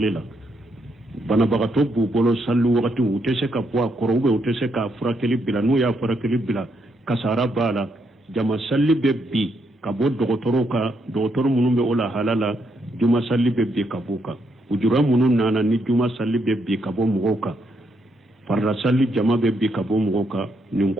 la bana bagato bu bolo sallu wakati utese ka poa korobe utese ka furakeli bila no ya furakeli bila kasara bala jama salli be bi ka bo dogotoro munun be ola halala juma salli be bi ka buka ujura munun nana ni juma salli be bi ka bo mugoka farra salli jama be bi ka bo mugoka nin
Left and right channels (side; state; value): both; normal; correlation 0.77